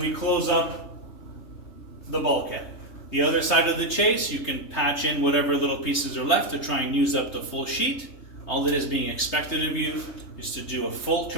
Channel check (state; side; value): late; right; 3.2 ms